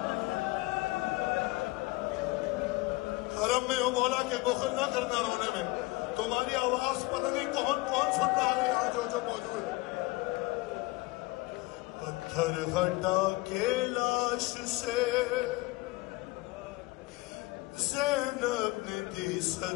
حرم میں ہو مولا کے بخل نہ کرنا رونے میں، تمہاری آواز پتہ نہیں کون سن رہا ہے یہاں جو موجود ہے۔ پتھر ہٹا کے لاش سے زینب نے دی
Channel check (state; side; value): quieter; right; 21.8 dB